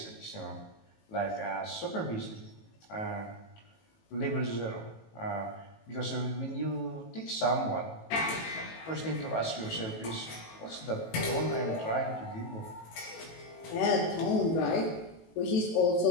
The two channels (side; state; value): right; late; 18 ms